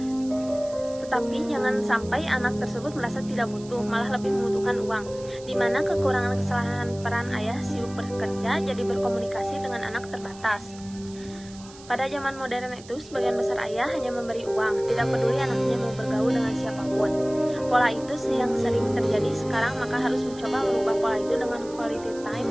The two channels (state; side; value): noise; right; hiss, 20 dB below the sound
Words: Tetapi jangan sampai anak tersebut merasa tidak butuh, malah lebih membutuhkan uang, di mana kekurangan kesalahan peran ayah sibuk bekerja jadi berkomunikasi dengan anak terbatas. Pada zaman modern itu, sebagian besar ayah hanya memberi uang, tidak peduli anaknya mau bergaul dengan siapapun. Pola itu yang sering terjadi sekarang, maka harus mencoba merubah pola itu dengan quality time